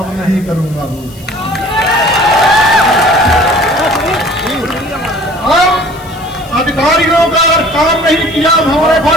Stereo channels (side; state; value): left; noise; hiss, 23 dB below the sound